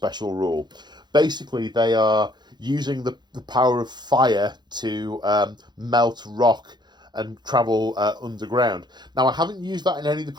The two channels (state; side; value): late; left; 0.21 ms